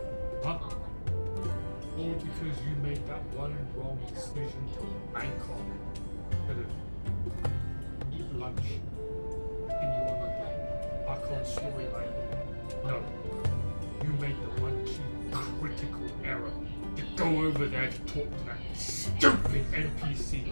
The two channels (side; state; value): both; inverted; correlation -1.00